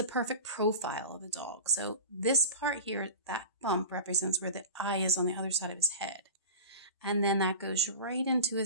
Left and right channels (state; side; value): inverted; both; correlation -0.33